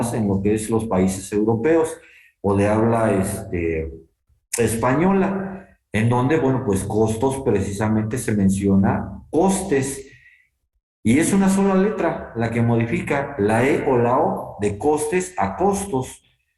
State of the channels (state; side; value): identical; both; correlation 1.00